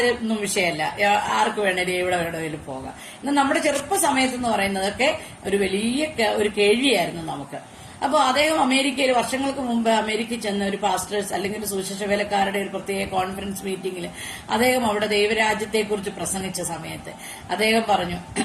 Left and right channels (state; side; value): identical; both; correlation 1.00